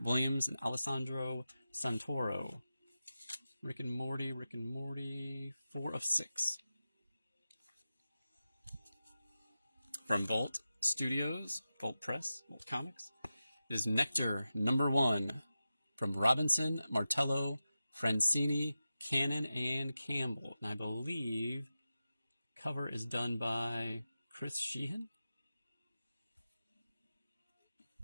Williams, and Alessandro Santoro. Rick and Morty, 4 of 6. From Vault Studios, Vault Press, Vault Comics, it is Nectar #1 from Robinson, Martello, Francini, Cannon, and Campbell. And I believe cover is done by Chris Sheehan.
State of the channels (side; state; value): both; inverted; correlation -0.93